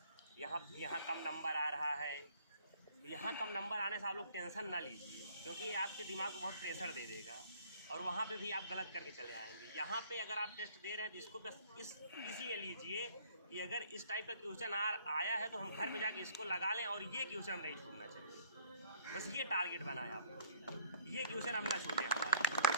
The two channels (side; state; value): both; inverted; correlation -0.57